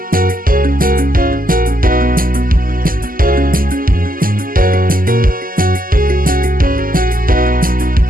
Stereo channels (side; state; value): left; late; 0.41 ms